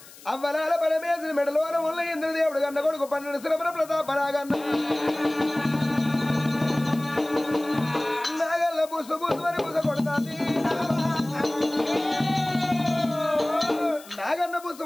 అవ్వలాల పరమేశ్వరి మెడలోన ఉన్న ఇంద్రదేవుడు కన్న కొడుకు 12 శ్రమల ప్రతాపరాగన్న నాగల్ల బుసు బుసుమని బుస కొడతాంది. నాగన్న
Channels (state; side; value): noise; left; hiss, 20 dB below the sound